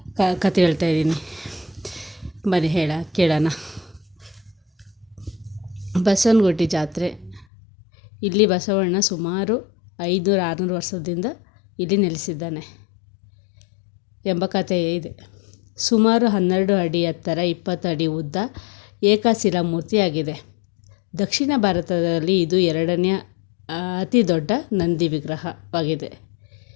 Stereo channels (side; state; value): right; drops out; at 7.5 s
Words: ಬನ್ನಿ ಕೇಳೋಣ. ಬಸವನಗುಡಿ ಜಾತ್ರೆ. ಇಲ್ಲಿ ಬಸವಣ್ಣ ಸುಮಾರು 500-600 ವರ್ಷದಿಂದ ಇಲ್ಲಿ ನೆಲೆಸಿದ್ದಾನೆ ಎಂಬ ಕಥೆ ಇದೆ. ಸುಮಾರು 12 ಅಡಿ ಎತ್ತರ, 20 ಅಡಿ ಉದ್ದ, ಏಕಶಿಲಾ ಮೂರ್ತಿಯಾಗಿದೆ. ದಕ್ಷಿಣ ಭಾರತದಲ್ಲಿ ಇದು 2ನೇ ಅತಿ ದೊಡ್ಡ ನಂದಿ ವಿಗ್ರಹವಾಗಿದೆ.